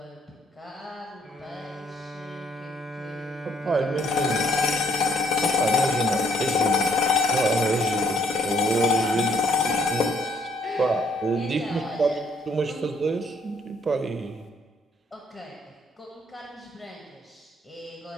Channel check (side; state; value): both; normal; correlation 0.67